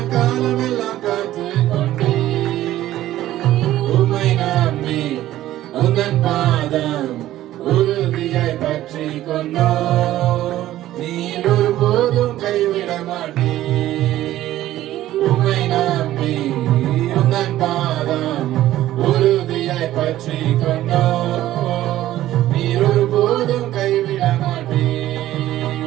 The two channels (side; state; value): left; quieter; 14.1 dB